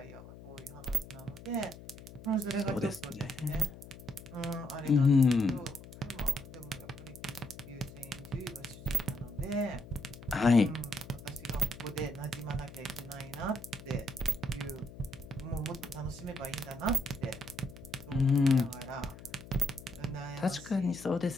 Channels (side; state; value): left; noise; hum, 16 dB below the sound